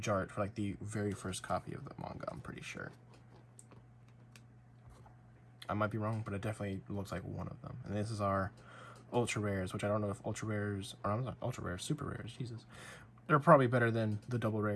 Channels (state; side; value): identical; both; correlation 1.00